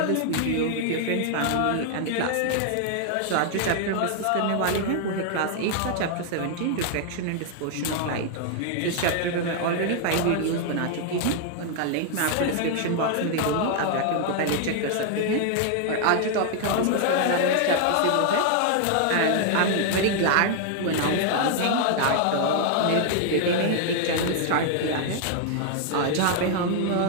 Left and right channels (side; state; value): both; different; correlation 0.00